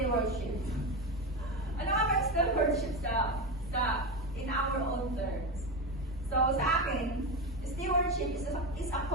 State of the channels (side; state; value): both; normal; correlation 0.17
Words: Ano nga ba ang stewardship in our own terms? So, sa akin, stewardship is a